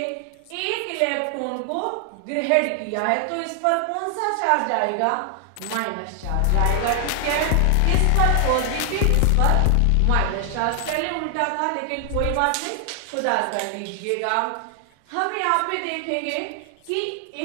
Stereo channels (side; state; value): both; different; correlation 0.00